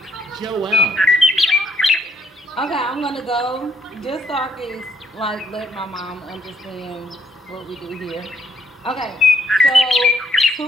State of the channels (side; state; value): both; normal; correlation 0.70